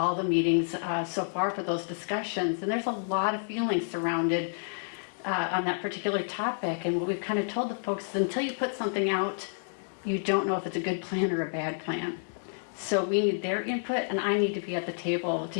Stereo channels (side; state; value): right; silent; digital silence